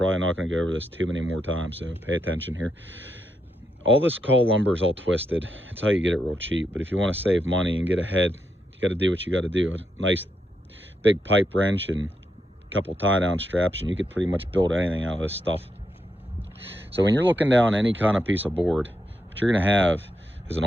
not gonna go over this too many more times, so pay attention here. All this call lumber is all twisted. It's how you get it real cheap, but if you wanna save money and get ahead, got to do what you got to do. A nice big pipe wrench and a couple tie down straps, and you could pretty much build anything out of this stuff. So when you're looking down any kind of piece of board, what you're going to have is an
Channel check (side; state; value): both; normal; correlation 0.82